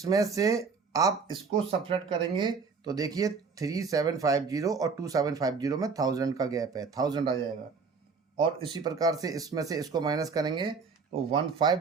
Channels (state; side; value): quieter; left; 5.1 dB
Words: से आप इसको सब्ट्रैक्ट करेंगे तो देखिए 3750 और 2750 में 1000 का गैप है, 1000 आ जाएगा। और इसी प्रकार से इसमें से इसको माइनस करेंगे तो